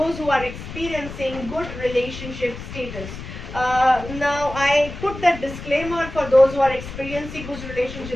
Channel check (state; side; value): noise; left; rumble, 11 dB below the sound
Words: who are experiencing good relationship status. Now I put that disclaimer for those who are experiencing good